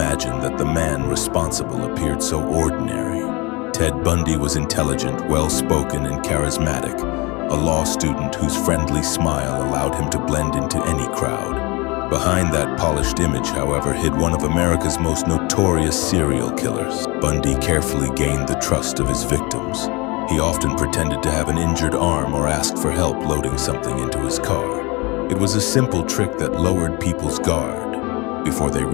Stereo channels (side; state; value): right; quieter; 25.9 dB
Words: that the man responsible appeared so ordinary. Ted Bundy was intelligent, well-spoken, and charismatic, a law student whose friendly smile allowed him to blend into any crowd. Behind that polished image, however, hid one of America's most notorious serial killers. Bundy carefully gained the trust of his victims. He often pretended to have an injured arm or asked for help loading something into his car. It was a simple trick that lowered people's guard before they